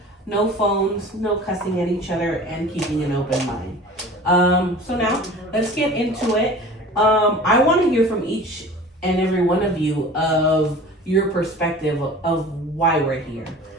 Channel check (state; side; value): normal; both; correlation 0.41